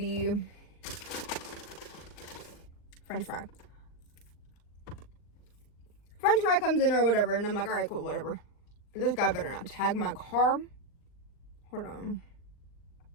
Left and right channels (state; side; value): late; right; 39 ms